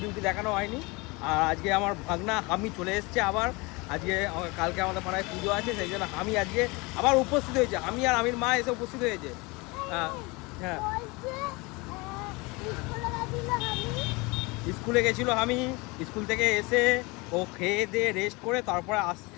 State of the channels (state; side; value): quieter; right; 25.8 dB